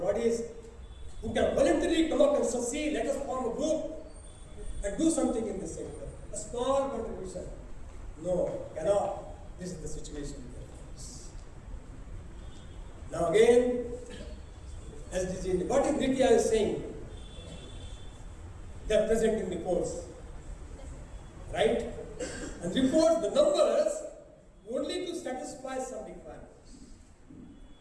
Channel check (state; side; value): identical; both; correlation 1.00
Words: who can voluntarily come up and succeed. Let us form a group and do something in this sector. A small contribution. No, cannot. This is the situation. Now again, SDG, what is Nitya is saying? They are presenting reports, right? And reports, the numbers, only to satisfy some requirements.